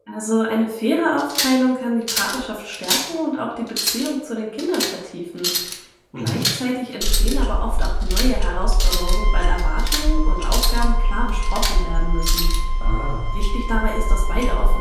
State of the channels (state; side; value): identical; both; correlation 1.00